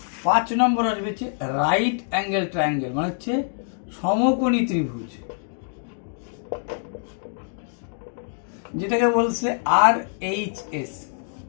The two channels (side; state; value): right; silent; digital silence